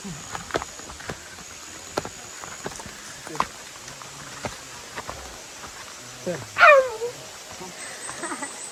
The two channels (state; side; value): identical; both; correlation 1.00